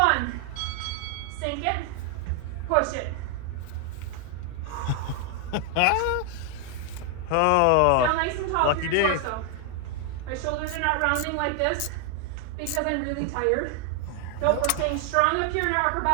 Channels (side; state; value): both; different; correlation 0.00